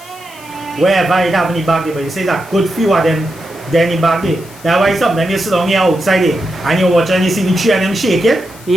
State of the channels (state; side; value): noise; left; hiss, 21 dB below the sound